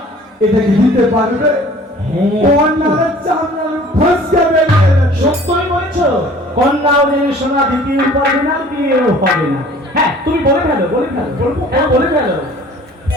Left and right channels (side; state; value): both; normal; correlation 0.50